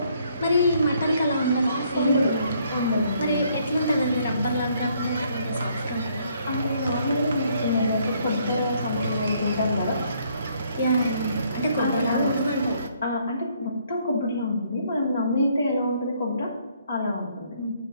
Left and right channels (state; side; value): inverted; both; correlation -0.67